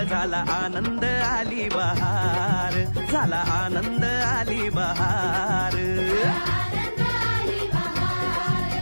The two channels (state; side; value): inverted; both; correlation -1.00